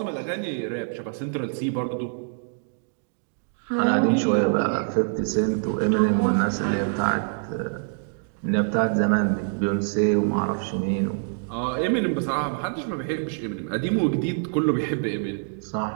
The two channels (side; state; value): left; silent; digital silence